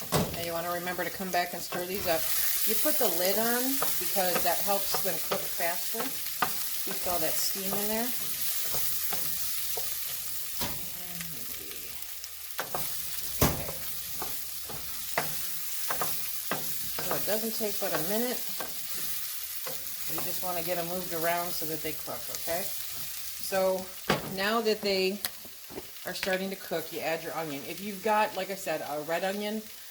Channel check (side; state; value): both; identical; correlation 1.00